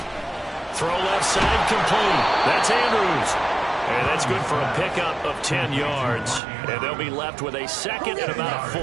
Throw left side, complete. That's Andrews. And that's good for a pickup of 10 yards. And they'll be left with a second and about a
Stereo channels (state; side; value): drops out; left; at 6.4 s